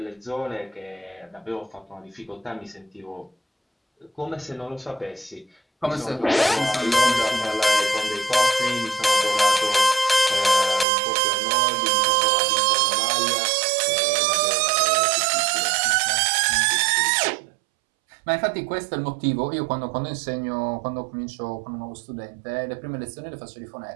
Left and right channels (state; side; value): drops out; left; at 10.9 s